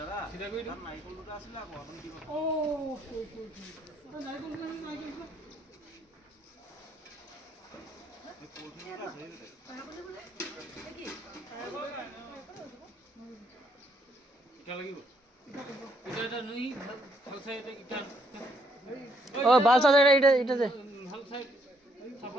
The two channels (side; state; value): both; normal; correlation 0.71